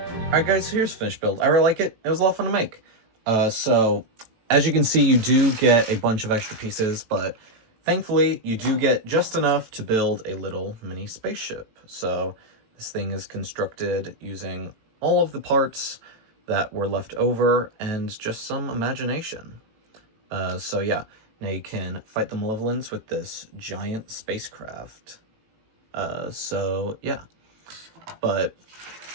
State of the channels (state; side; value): late; left; 18 ms